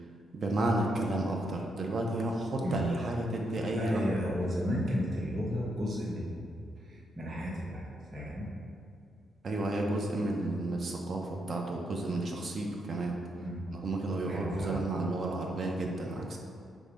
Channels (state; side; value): normal; both; correlation 0.79